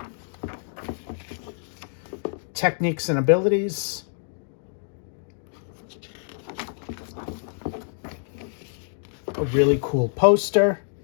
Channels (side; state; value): right; silent; digital silence